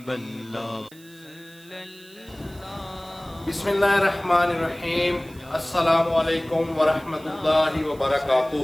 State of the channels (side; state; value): right; noise; hiss, 24 dB below the sound